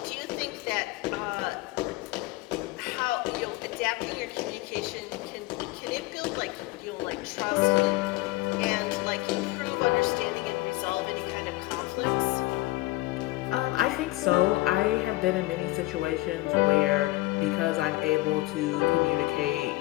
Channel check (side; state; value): right; quieter; 19.8 dB